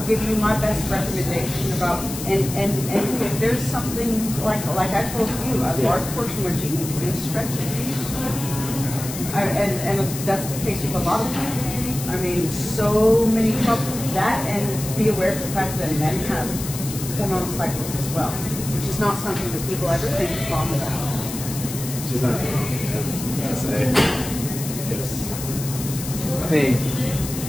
give you my best recommendation about, and if there's something like I told you, a large portion of what you need to do is stretch it. And that's the case with a lot of people. I mean, so many people, that and be aware of the fact that men have hormonal cycles as well, which is not something that people ever think wrong about. She's not wrong, I say. Yes. I mean,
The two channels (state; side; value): noise; left; hiss, 9 dB below the sound